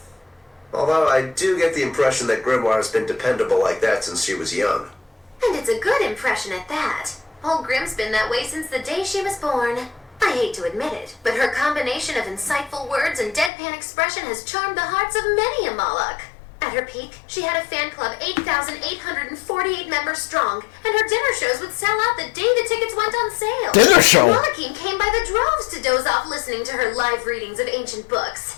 Although I do get the impression that Grimoire has been dependable like that since she was young. And it's a good impression at that. Old Grim's been that way since the day she was born. I hate to admit it, but her combination of insightful words and deadpan expression has charmed the hearts of many a Moloch. At her peak, she had a fan club 8,848 members strong, and her dinner shows would sell out the day the tickets went on sale. Dinner show? Molochine came by the droves to doze off listening to her live readings of ancient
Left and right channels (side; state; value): right; drops out; at 13.5 s